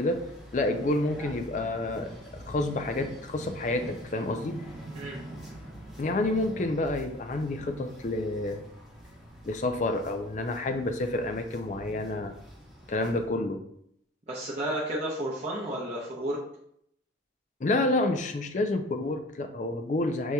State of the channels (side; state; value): both; normal; correlation 0.43